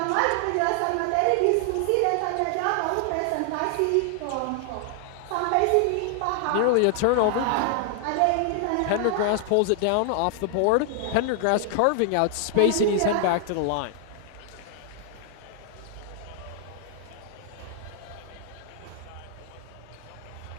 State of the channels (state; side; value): different; both; correlation 0.00